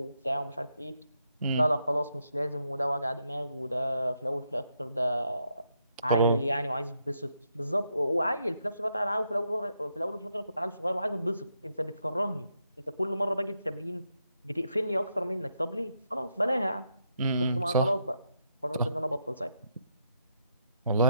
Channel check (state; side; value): inverted; both; correlation -0.79